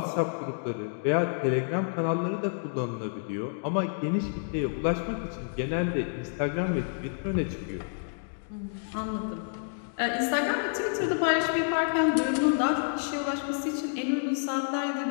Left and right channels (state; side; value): silent; right; digital silence